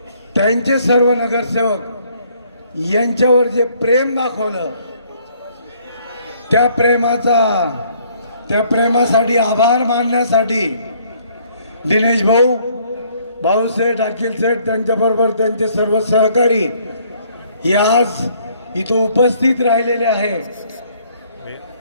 त्यांचे सर्व नगरसेवक यांच्यावर जे प्रेम दाखवलं, त्या प्रेमासाठी आभार मानण्यासाठी दिनेश भाऊ, भाऊसेठ, अखिल सेठ, त्यांच्याबरोबर त्यांचे सर्व सहकारी हे आज इथं उपस्थित राहिलेले आहे.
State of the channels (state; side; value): inverted; both; correlation -0.63